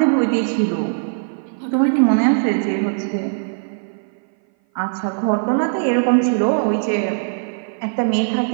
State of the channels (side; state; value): left; silent; 58 dB below the other